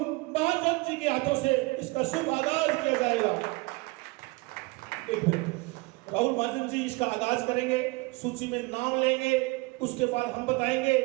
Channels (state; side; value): quieter; left; 24.5 dB